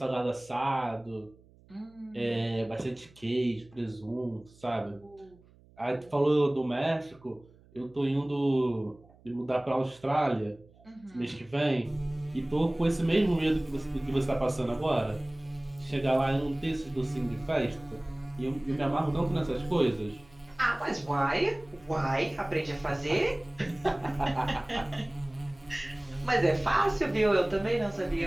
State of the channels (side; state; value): right; noise; hum, 27 dB below the sound